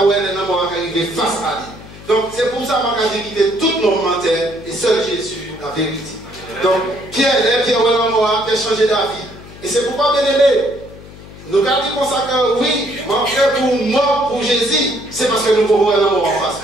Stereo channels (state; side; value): noise; left; hum, 17 dB below the sound